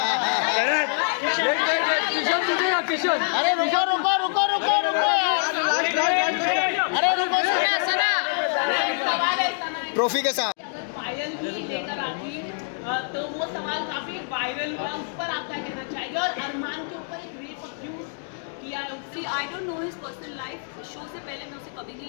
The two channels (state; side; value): silent; right; 62 dB below the other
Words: अरे रुको यार। अरे रुको सना ट्रॉफी के साथ अगर पायल भी लेकर आती तो वो सवाल काफी वायरल हुआ, उस पर आप क्या कहना चाहेंगे? और अरमान के ऊपर एक रेप अब्यूज किया है उसने। आई don't know his personal life, show से पहले मैं उसे कभी